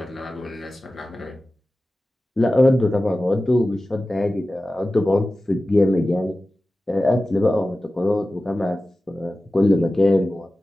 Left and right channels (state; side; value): normal; both; correlation 0.95